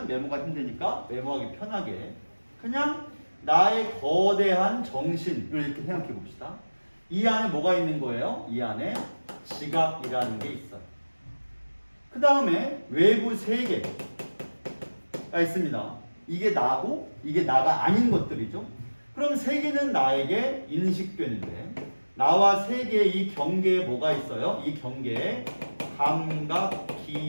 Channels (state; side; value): inverted; both; correlation -1.00